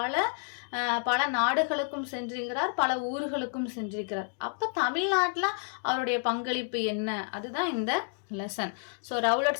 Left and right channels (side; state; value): right; silent; 58 dB below the other